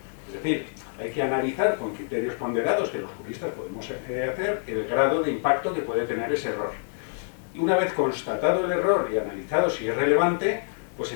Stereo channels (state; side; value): silent; right; digital silence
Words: Es decir, hay que analizar con criterios ponderados que los juristas podemos hacer el grado de impacto que puede tener ese error. Y una vez constatado el error y analizado si es relevante, pues